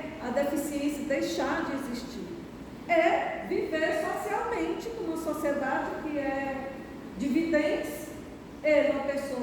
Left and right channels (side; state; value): both; identical; correlation 1.00